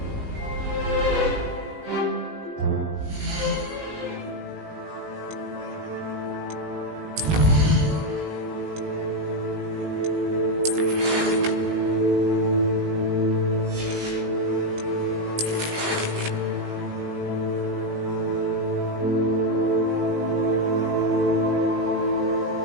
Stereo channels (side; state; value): left; late; 18 ms